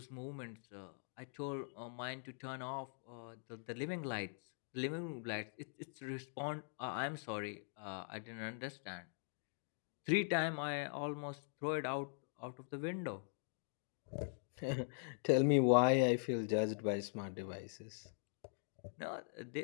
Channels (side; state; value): right; silent; digital silence